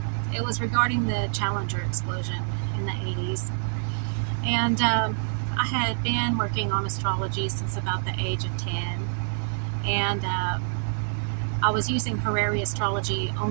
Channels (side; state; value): left; silent; digital silence